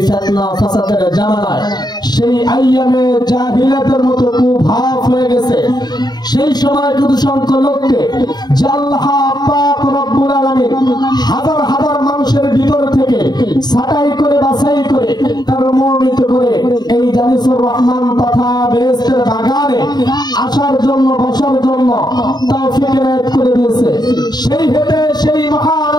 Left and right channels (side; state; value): right; late; 0.20 ms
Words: ফিতনা ফাসাদের জামানায় সেই আইয়ামে জাহিলিয়াতের মতো কুভাব হয়ে গেছে। সেই সময় কিছু সংখ্যক লোককে আল্লাহ পাক রব্বুল আলামিন হাজার হাজার মানুষের ভিতর থেকে ছাঁটাই করে বাছাই করে তার মনোনীত করে এই জালিসুর রহমান তথা বেহেশতের বাগানে আসার জন্য বসার জন্য তৌফিক এনায়েত করে দিয়েছে। সেই হেতু সেই মহান